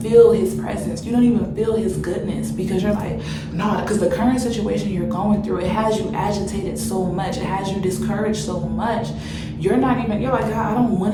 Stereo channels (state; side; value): identical; both; correlation 1.00